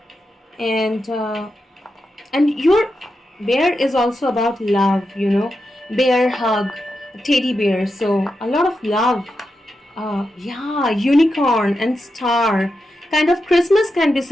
and your bear is also about love. You know, bear hug, teddy bear. So a lot of love. Yeah, unicorn and star. Kind of Christmas can be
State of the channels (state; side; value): normal; both; correlation 0.88